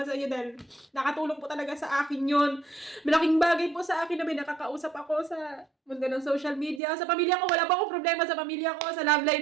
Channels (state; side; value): drops out; left; at 6.8 s